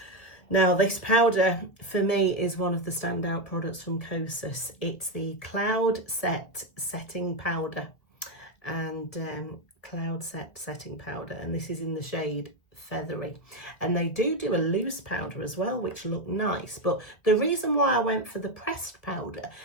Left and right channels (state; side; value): late; right; 1.9 ms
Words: Now, this powder for me is one of the standout products from Kosas. It's the Cloud Set Setting Powder, and Cloud Set Setting Powder, and this is in the shade Feathery. And they do a loose powder as well, which look nice. But the reason why I went for the pressed powder